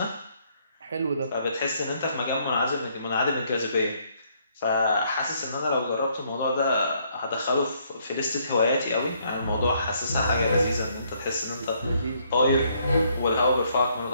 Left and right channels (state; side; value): inverted; both; correlation -0.69